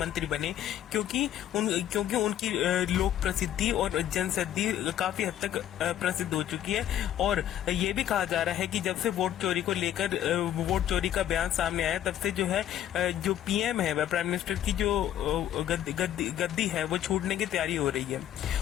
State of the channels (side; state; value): right; quieter; 11.4 dB